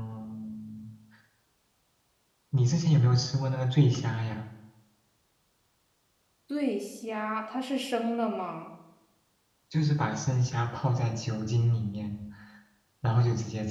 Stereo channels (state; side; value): identical; both; correlation 1.00